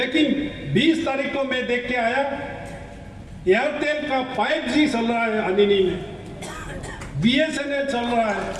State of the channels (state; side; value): identical; both; correlation 1.00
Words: 20 तारीख को मैं देख के आया, एयरटेल का 5G चल रहा है अनिनी में, BSNL चल रहा है,